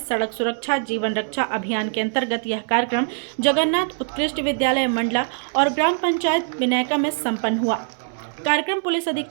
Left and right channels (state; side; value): silent; left; digital silence